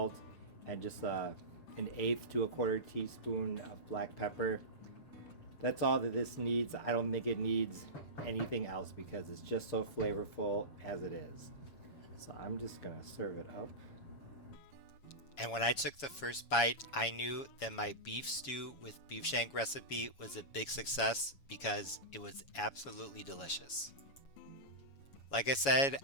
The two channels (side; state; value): right; late; 7.2 ms